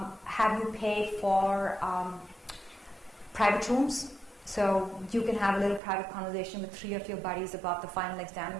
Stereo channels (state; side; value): drops out; left; at 5.8 s